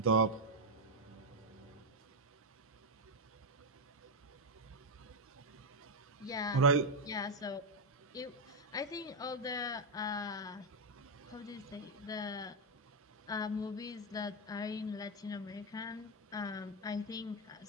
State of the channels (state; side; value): normal; both; correlation 0.02